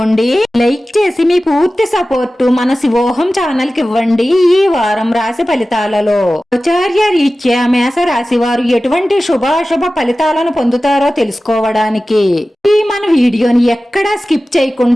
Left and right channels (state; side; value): normal; both; correlation 0.96